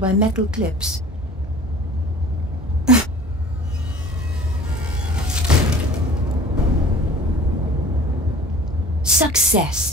by metal clips.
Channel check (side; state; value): both; normal; correlation 0.44